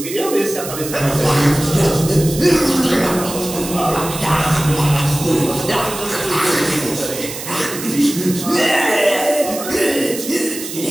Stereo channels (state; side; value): noise; right; hiss, 9 dB below the sound